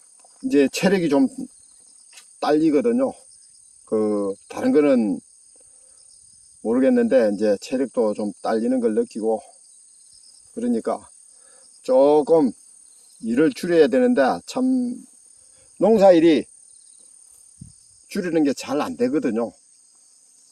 이제 체력이 좀 딸리거든요. 다른 거는 모르겠는데 이제 체력도 좀 딸리는 걸 느끼고, 그러니까 조금 일을 줄여야 되는데 참 농사일이 줄이는 게 잘 안 되거든요.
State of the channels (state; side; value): identical; both; correlation 1.00